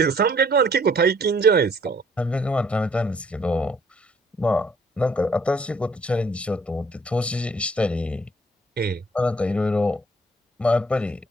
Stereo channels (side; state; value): both; normal; correlation 0.62